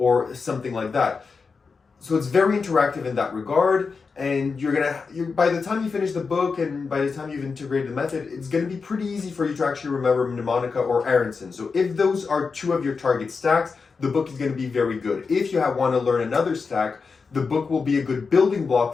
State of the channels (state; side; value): quieter; right; 4.9 dB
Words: something like that. So it's very interactive in that regard, and by the time you finish the book and by the time you've integrated the method, it's going to be pretty easy for you to actually remember mnemonica or Aronson. So if those are two of your target stacks, the book is going to be very good. If you want to learn another stack, the book will be a good building